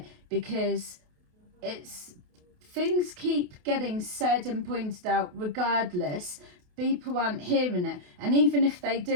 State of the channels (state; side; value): late; left; 28 ms